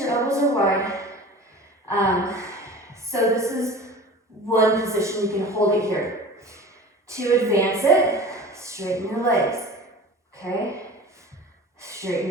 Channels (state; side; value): normal; both; correlation 0.38